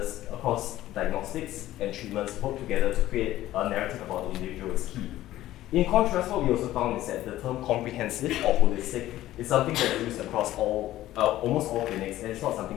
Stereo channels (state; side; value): quieter; right; 14.6 dB